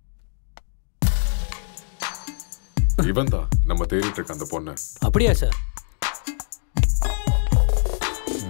இவன் தான் நம்ம தேடிட்டு இருக்க அந்த பொண்ணு. அப்படியா சார்?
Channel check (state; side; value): silent; right; digital silence